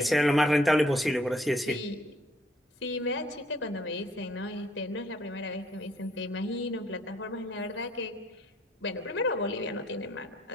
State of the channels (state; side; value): normal; both; correlation 0.65